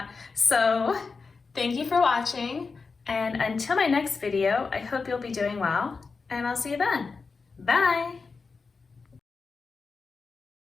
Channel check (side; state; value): right; quieter; 4.6 dB